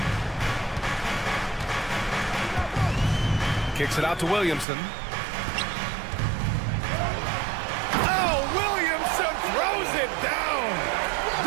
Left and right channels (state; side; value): drops out; left; at 4.7 s